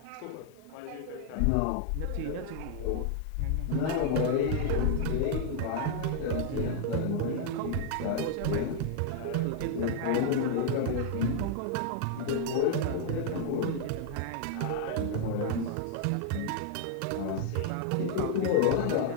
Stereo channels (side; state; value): both; different; correlation 0.00